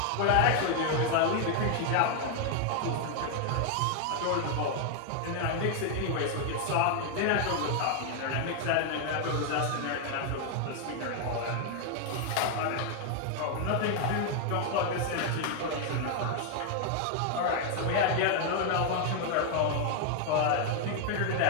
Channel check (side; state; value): both; different; correlation 0.00